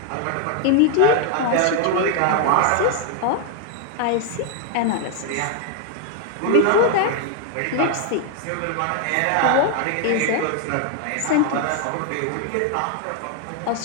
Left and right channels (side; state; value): both; different; correlation 0.00